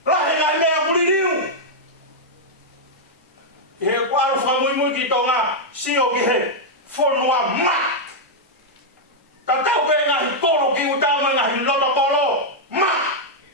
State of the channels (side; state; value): both; normal; correlation -0.04